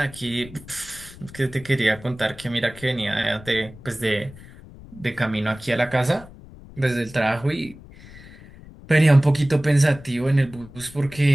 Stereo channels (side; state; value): left; noise; rumble, 19 dB below the sound